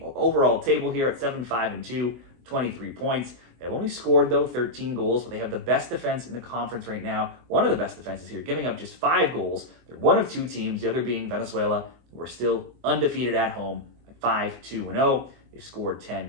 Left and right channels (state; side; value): late; left; 24 ms